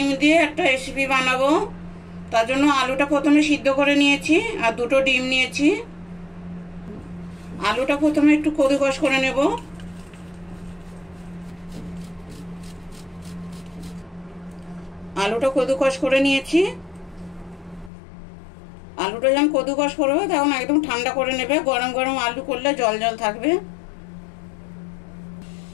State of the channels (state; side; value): drops out; right; at 17.9 s